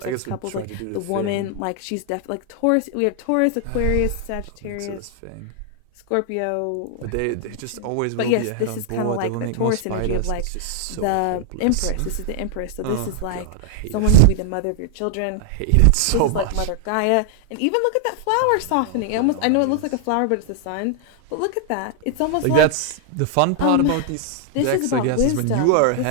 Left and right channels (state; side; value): different; both; correlation 0.00